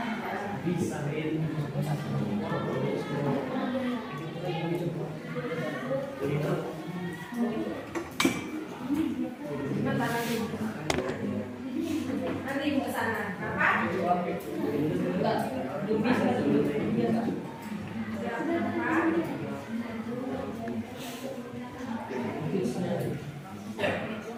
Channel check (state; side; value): identical; both; correlation 1.00